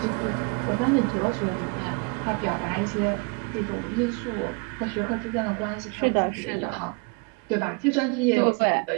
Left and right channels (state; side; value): quieter; left; 33.4 dB